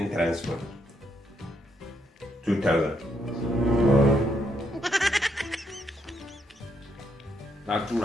transport 2,000. Na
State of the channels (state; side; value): normal; both; correlation 0.75